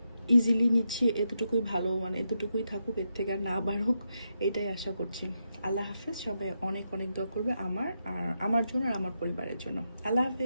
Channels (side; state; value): both; inverted; correlation -0.84